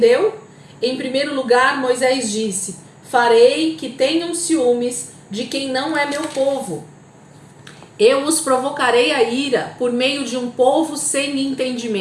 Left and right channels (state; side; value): identical; both; correlation 1.00